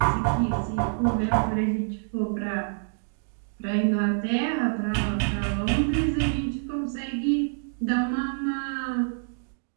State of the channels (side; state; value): left; silent; digital silence